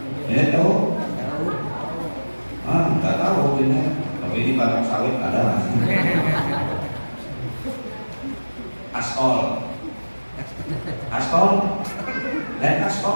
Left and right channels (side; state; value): both; inverted; correlation -1.00